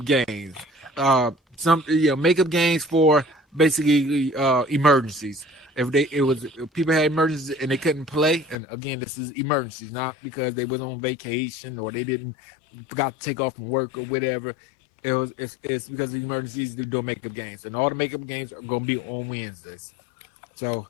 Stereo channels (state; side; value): drops out; right; at 8.6 s